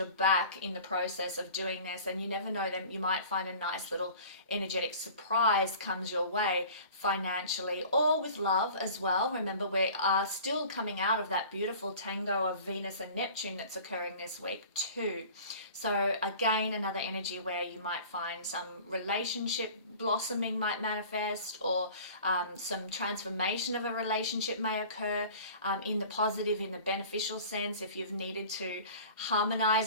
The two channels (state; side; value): inverted; both; correlation -0.43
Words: back in the process of doing this, and you never know, them you might find a nice little energetic surprise comes your way, financially or with love as well. Remember, we are still coming out of that beautiful tango of Venus and Neptune that's occurring this week too. So again, another energy where you might find some relationship blossoming might manifest, or some transformation of a relationship may occur, in the positive, in the beneficial sense. If you've needed to